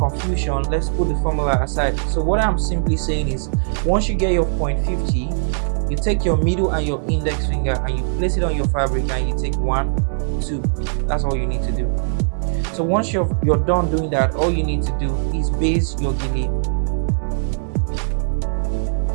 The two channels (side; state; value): left; silent; digital silence